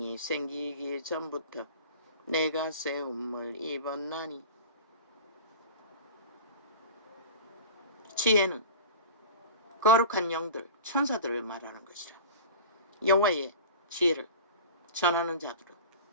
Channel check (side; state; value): both; inverted; correlation -0.34